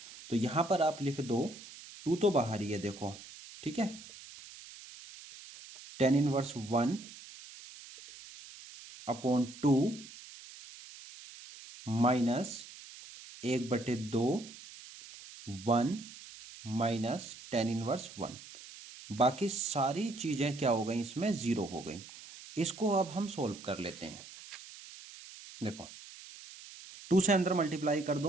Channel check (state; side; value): noise; right; hiss, 16 dB below the sound